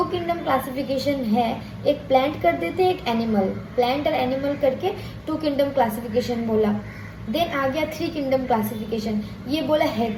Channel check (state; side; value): identical; both; correlation 1.00